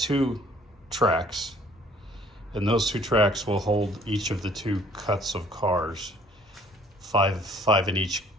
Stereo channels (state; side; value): normal; both; correlation 0.57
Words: tracks, and those 2 tracks will hold each of the 2 cuts of cars, five in each